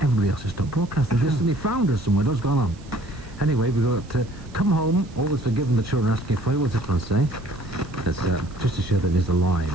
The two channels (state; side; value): noise; right; hiss, 26 dB below the sound